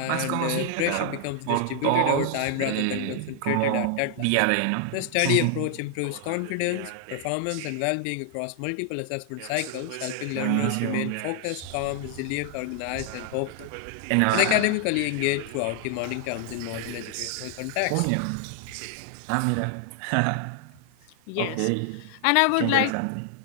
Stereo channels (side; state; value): both; different; correlation 0.00